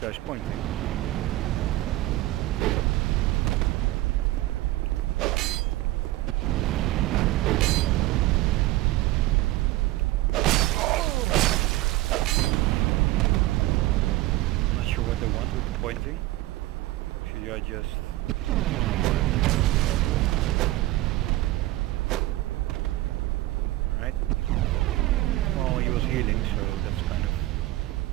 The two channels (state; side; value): quieter; left; 17.5 dB